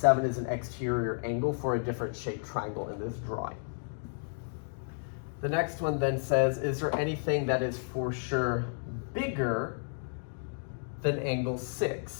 is an exterior angle for a different shaped triangle in this drawing. The next one then says, is there anything that is for sure bigger than angle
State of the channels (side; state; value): right; silent; digital silence